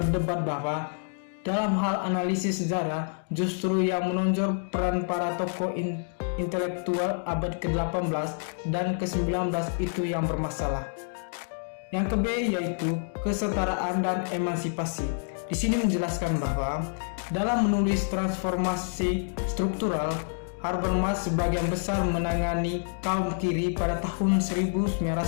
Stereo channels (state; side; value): silent; right; digital silence